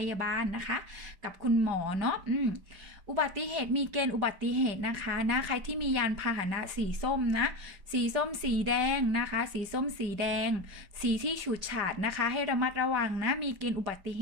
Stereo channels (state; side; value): late; left; 5.2 ms